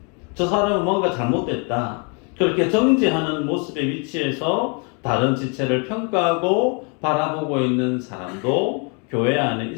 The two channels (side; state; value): right; quieter; 35.9 dB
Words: 저 사람은 뭔가 잘못됐다, 그렇게 정죄하는 모습의 위치에서 다른 지체를 평가하고 바라보고 있는 사람도 교회 안에